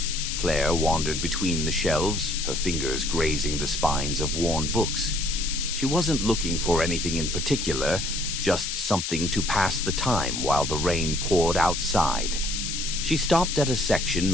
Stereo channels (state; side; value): noise; left; hiss, 3 dB below the sound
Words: Claire wandered between the shelves, her fingers grazing the spines of worn books. She wasn't looking for anything in particular, just something to pass the time while the rain poured outside. She stopped at a section